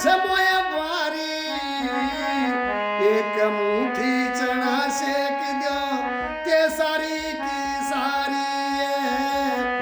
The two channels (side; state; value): both; identical; correlation 1.00